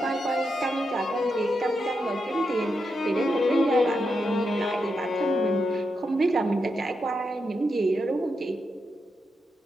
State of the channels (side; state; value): both; normal; correlation 0.85